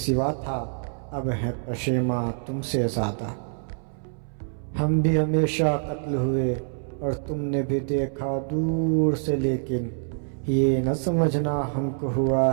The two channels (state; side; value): silent; left; 60 dB below the other